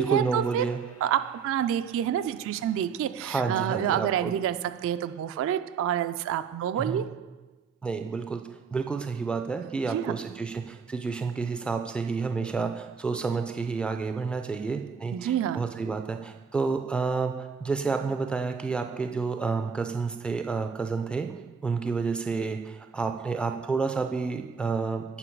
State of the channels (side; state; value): left; quieter; 5.9 dB